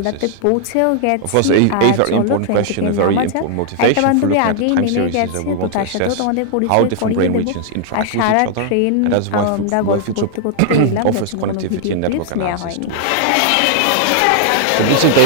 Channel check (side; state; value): both; different; correlation -0.01